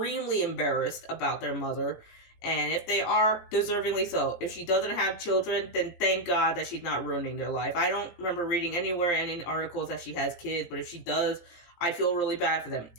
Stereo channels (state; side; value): late; right; 17 ms